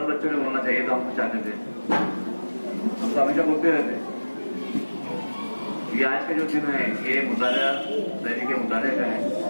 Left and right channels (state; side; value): inverted; both; correlation -1.00